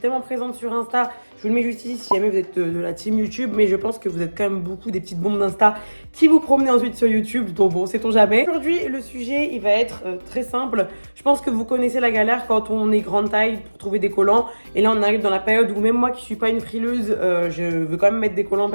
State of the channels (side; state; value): both; inverted; correlation -1.00